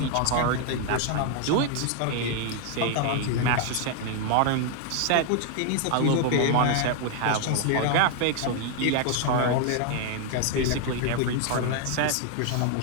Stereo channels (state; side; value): different; both; correlation 0.00